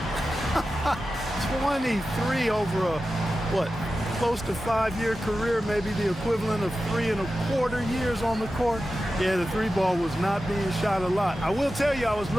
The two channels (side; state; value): both; normal; correlation 0.93